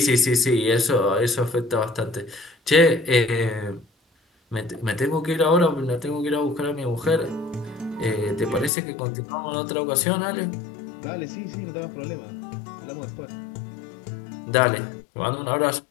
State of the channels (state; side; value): drops out; right; at 8.7 s